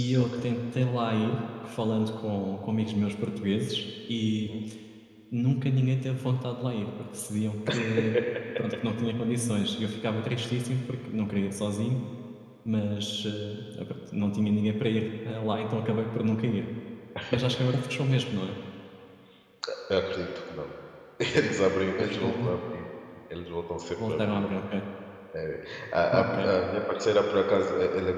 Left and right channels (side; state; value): both; identical; correlation 1.00